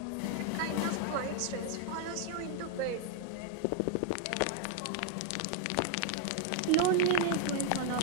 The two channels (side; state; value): both; different; correlation 0.00